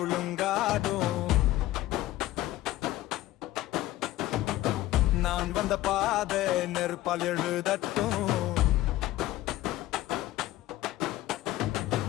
நான் வந்த பாதை நெருப்பால் எழுதட்டும்.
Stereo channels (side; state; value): right; quieter; 15.7 dB